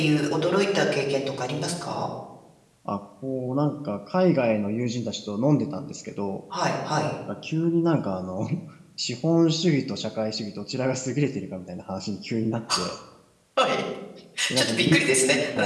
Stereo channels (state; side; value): identical; both; correlation 1.00